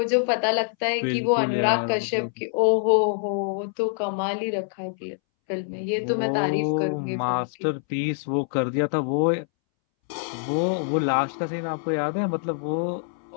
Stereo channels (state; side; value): silent; right; 62 dB below the other